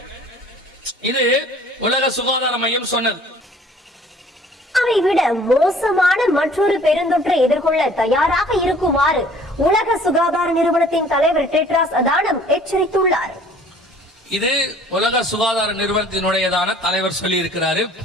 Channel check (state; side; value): normal; both; correlation 0.53